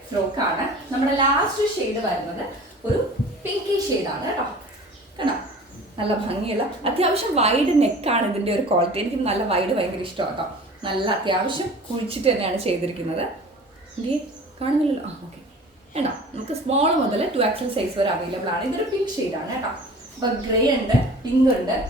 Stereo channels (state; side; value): normal; both; correlation 0.43